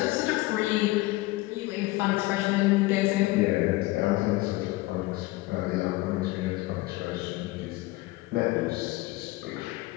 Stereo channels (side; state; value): right; quieter; 20.1 dB